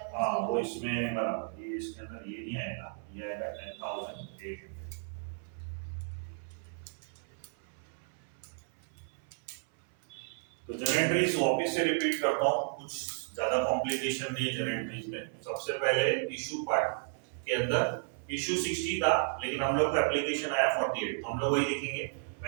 हाँ वो माइनस इसमें बराबर, ये इसके अंदर ये नहीं आएगा, ये आएगा 10,800। तो जनरेटरीज वापस से रिपीट करता हूँ, कुछ ज्यादा कॉम्प्लिकेशन नहीं है जनरेटरीज में। सबसे पहले इशू पार्ट के अंदर इशू 60 था, लेकिन हम लोग को एप्लीकेशन आया 48, तो हम लोग वही लिखेंगे,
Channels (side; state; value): left; silent; 56 dB below the other